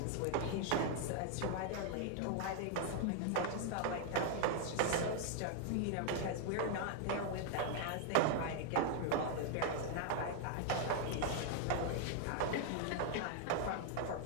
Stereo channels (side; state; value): both; different; correlation 0.00